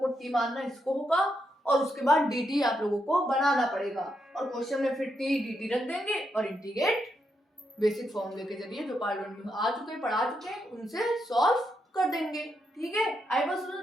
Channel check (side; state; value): both; normal; correlation 0.81